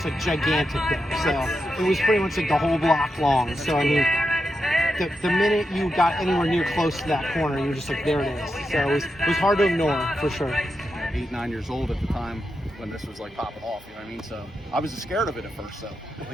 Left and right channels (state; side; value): normal; both; correlation 0.87